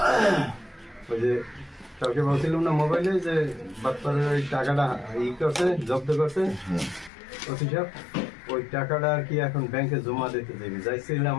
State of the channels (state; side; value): drops out; right; at 7.1 s